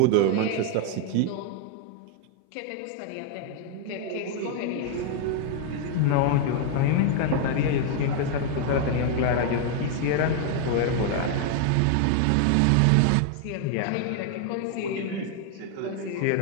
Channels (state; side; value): different; both; correlation 0.00